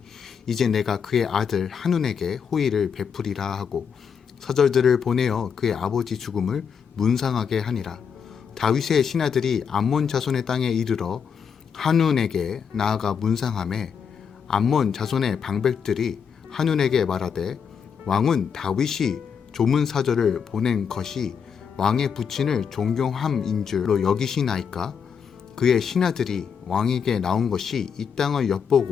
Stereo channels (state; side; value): quieter; right; 6.9 dB